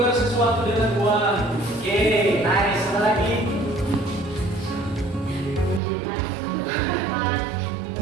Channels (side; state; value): left; drops out; at 5.8 s